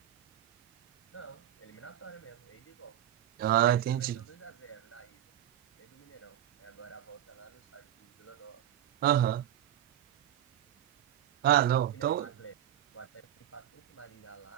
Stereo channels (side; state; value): left; quieter; 11.6 dB